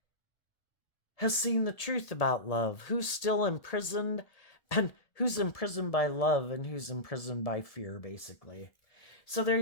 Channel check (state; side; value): late; right; 1.7 ms